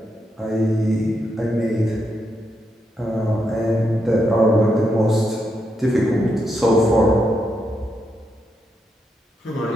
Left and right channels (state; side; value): normal; both; correlation 0.82